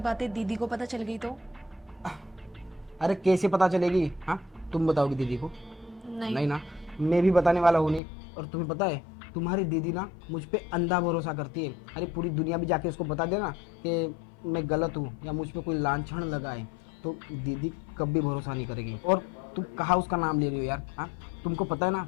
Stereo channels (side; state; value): right; drops out; at 8.0 s